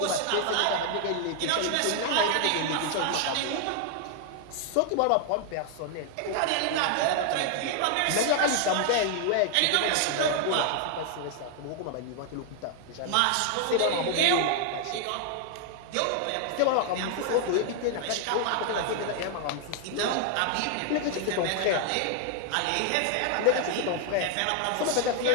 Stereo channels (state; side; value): different; both; correlation 0.00